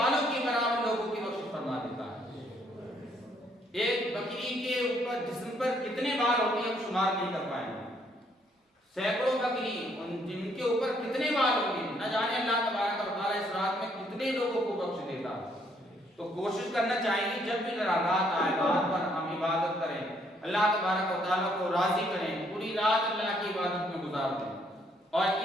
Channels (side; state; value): both; normal; correlation 0.68